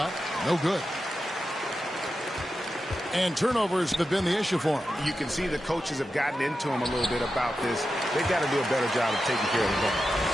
no good. And turnovers have been the issue for him. You can see the coaches have gotten into him a little bit about this. They've got to do a better job of taking care of the ball.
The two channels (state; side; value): normal; both; correlation 0.90